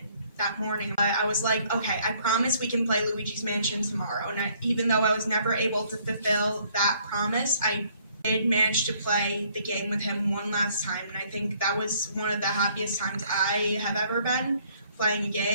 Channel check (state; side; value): inverted; both; correlation -0.64